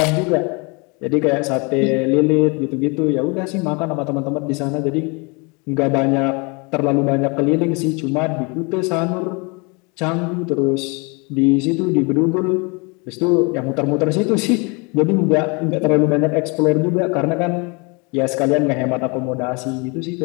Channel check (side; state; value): right; quieter; 30.4 dB